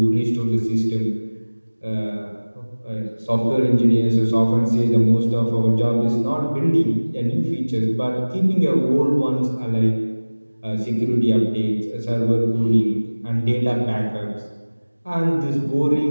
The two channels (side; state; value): both; inverted; correlation -1.00